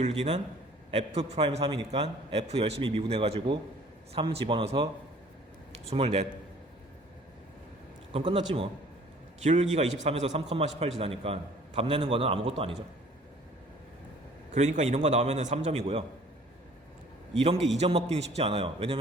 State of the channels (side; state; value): both; normal; correlation 0.53